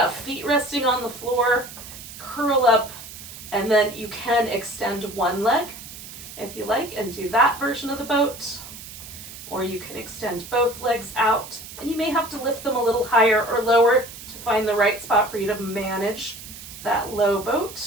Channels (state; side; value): noise; right; hiss, 14 dB below the sound